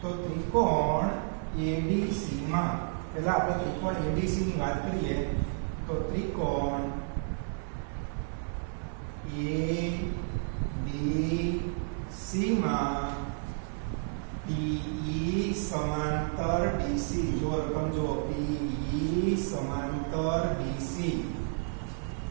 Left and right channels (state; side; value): silent; left; 57 dB below the other